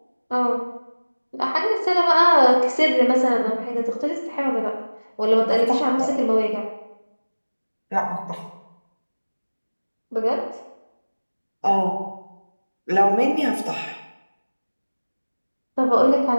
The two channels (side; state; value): both; inverted; correlation -1.00